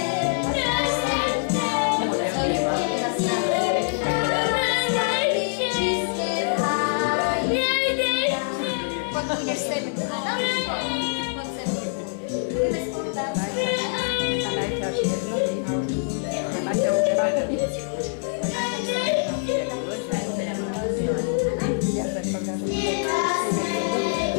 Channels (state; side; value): silent; right; digital silence